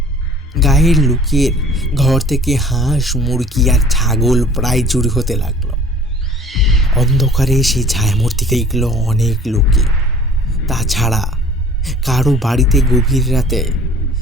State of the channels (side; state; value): both; normal; correlation 0.50